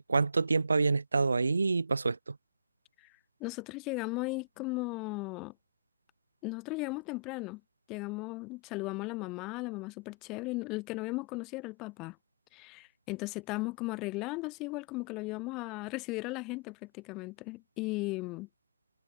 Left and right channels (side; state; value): both; inverted; correlation -0.49